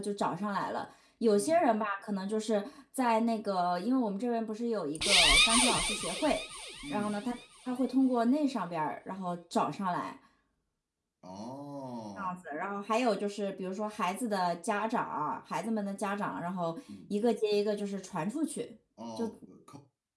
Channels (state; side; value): identical; both; correlation 1.00